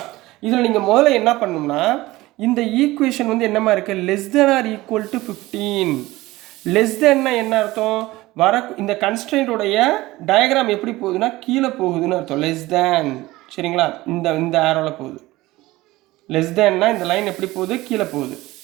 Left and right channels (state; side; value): quieter; left; 18.7 dB